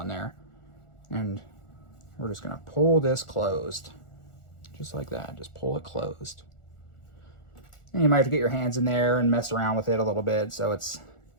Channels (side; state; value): right; late; 1.4 ms